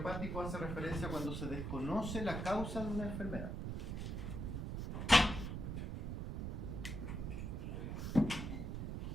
hace referencia a cuando se desconoce la causa de una enfermedad.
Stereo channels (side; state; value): right; noise; rumble, 3 dB below the sound